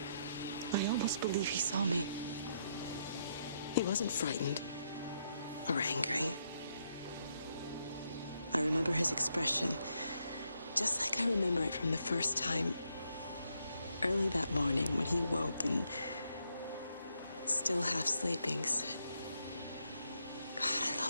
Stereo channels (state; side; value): inverted; both; correlation -0.77